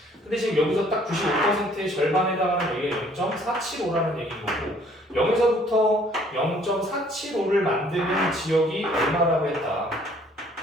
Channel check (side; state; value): both; normal; correlation 0.59